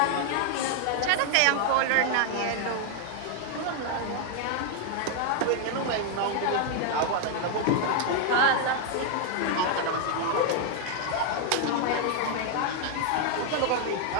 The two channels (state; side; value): different; both; correlation 0.00